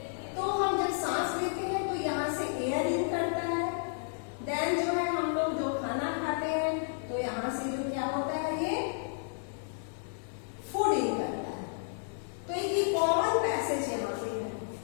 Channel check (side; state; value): right; silent; 56 dB below the other